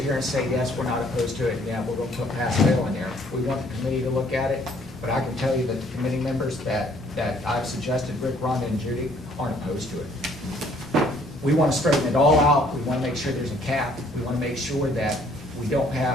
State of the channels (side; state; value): both; normal; correlation 0.62